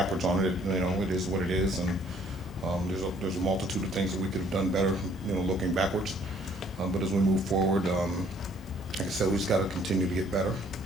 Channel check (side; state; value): both; normal; correlation 0.61